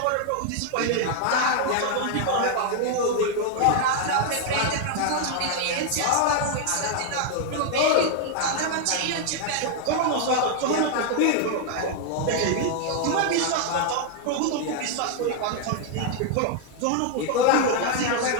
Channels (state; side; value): different; both; correlation 0.00